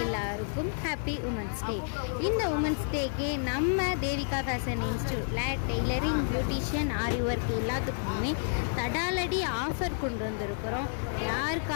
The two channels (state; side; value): silent; right; digital silence